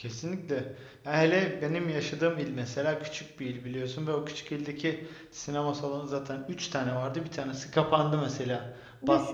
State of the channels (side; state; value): both; identical; correlation 1.00